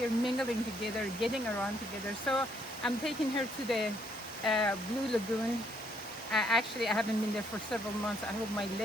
mingling together, getting around together. So I'm taking her to the Blue Lagoon. Actually, I haven't been there for several months. I hope my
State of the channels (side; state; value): both; normal; correlation 0.69